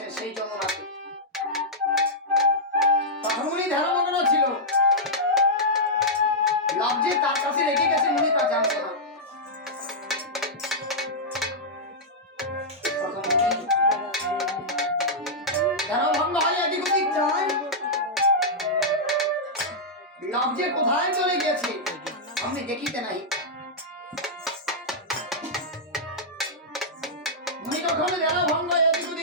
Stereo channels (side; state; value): both; normal; correlation -0.09